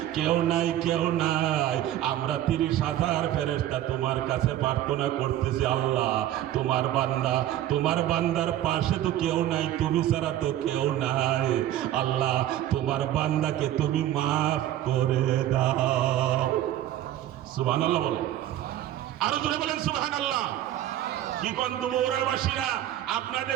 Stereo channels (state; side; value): quieter; left; 12.8 dB